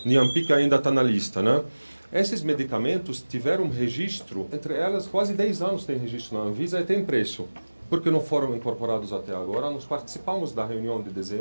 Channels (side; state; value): both; inverted; correlation -1.00